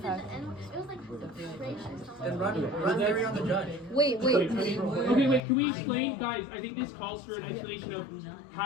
the N-word. It was like racist. Then run theory on the judge. Wait. Okay, wait, can we explain, guys? I think this calls for an explanation of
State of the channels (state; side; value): drops out; right; at 5.4 s